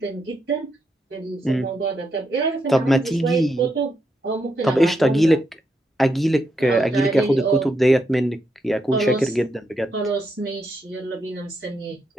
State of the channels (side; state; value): both; normal; correlation 0.81